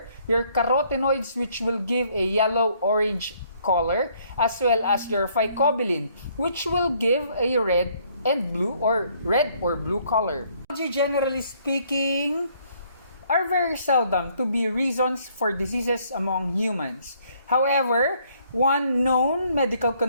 your carotenoids, which will give a yellow-orange color, as well as your phycobilin, which will give a red and blue or red or blue color. Algae, generally speaking, are very seldom to be reasons for diseases among humans. However, one known medical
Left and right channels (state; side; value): inverted; both; correlation -0.65